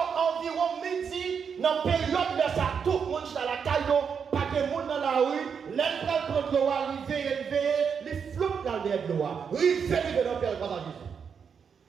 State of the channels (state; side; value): quieter; left; 6.6 dB